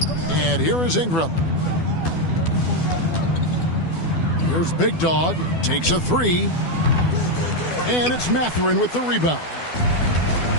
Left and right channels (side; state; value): right; late; 12 ms